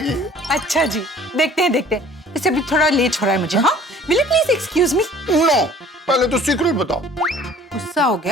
अच्छा जी, देखते हैं देखते हैं। इसे अभी थोड़ा लेट हो रहा है मुझे। हाँ, will you please excuse me? No, पहले तो सीक्रेट बताओ। गुस्सा हो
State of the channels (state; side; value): normal; both; correlation 0.51